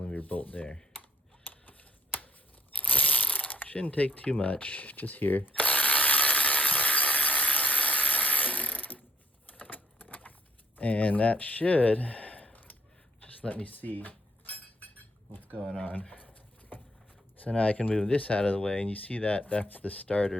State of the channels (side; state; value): both; normal; correlation 0.62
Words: bolt there. Shouldn't take too much, just here. And that should just let me see what's going on. So now I can move this out of the way, and you see that that's the